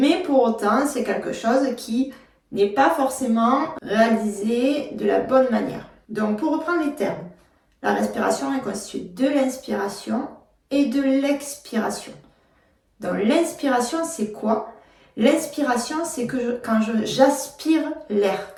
pour autant, c'est quelque chose qui n'est pas forcément réalisé de la bonne manière. Donc, pour reprendre les termes, la respiration est constituée de l'inspiration et de l'expiration. Donc, l'inspiration, c'est quoi? L'inspiration, c'est que quand j'aspire l'air,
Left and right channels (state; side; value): identical; both; correlation 1.00